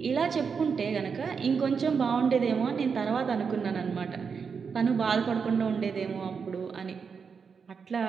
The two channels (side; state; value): left; quieter; 5.9 dB